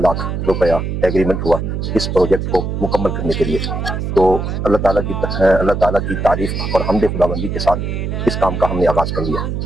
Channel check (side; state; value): right; noise; hum, 3 dB below the sound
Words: روپیہ ایگریمنٹ ہوا اس پروجیکٹ کو مکمل کرنے کے لیے. تو اللہ تعالیٰ کی تعریف اور حمد خداوندی کے ساتھ اس کام کا ہم نے آغاز کر لیا